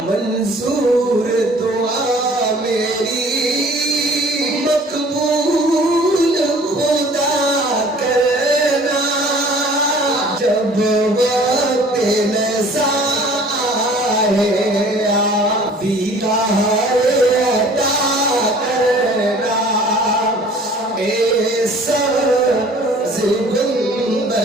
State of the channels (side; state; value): both; normal; correlation 0.51